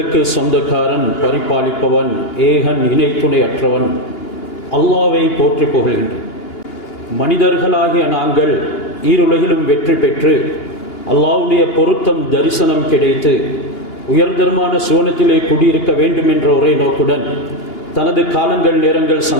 சொந்தக்காரன், பரிபாலிப்பவன், ஏகன், இணை துணை அற்றவன் அல்லாஹ்வை போற்றி புகழ்கின்றேன். மனிதர்களாகிய நாங்கள் ஈருலகிலும் வெற்றி பெற்று அல்லாஹ்வுடைய பொருத்தம் தரிசனம் கிடைத்து உயர்தரமான சுவனத்திலே குடியிருக்க வேண்டும் என்ற ஒரே நோக்குடன் தனது காலங்கள், நேரங்கள்,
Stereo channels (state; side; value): late; right; 2.8 ms